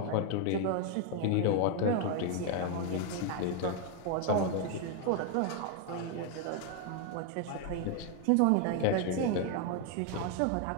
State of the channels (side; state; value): both; different; correlation 0.01